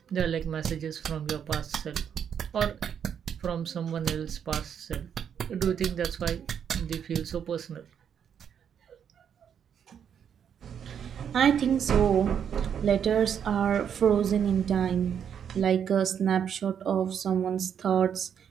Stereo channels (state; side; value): quieter; left; 8.2 dB